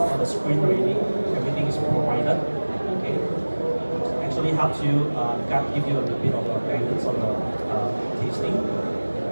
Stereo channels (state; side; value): inverted; both; correlation -1.00